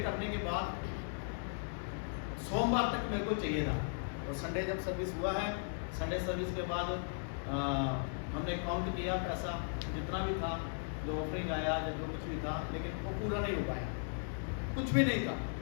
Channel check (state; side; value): silent; right; digital silence